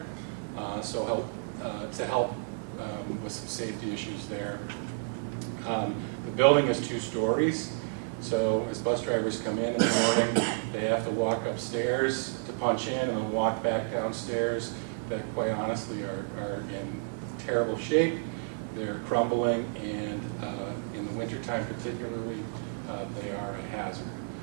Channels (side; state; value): left; silent; digital silence